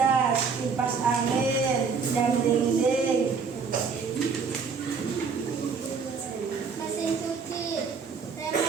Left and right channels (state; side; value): quieter; left; 5.4 dB